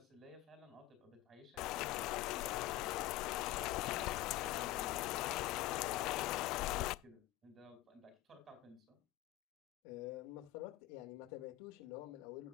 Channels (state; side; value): quieter; right; 16.1 dB